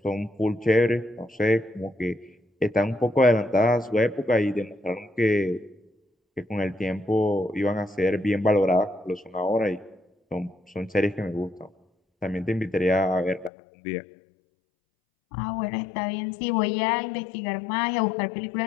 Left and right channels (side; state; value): right; drops out; at 13.5 s